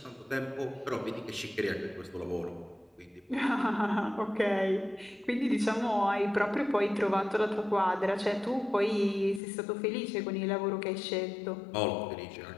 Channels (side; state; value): right; drops out; at 9.4 s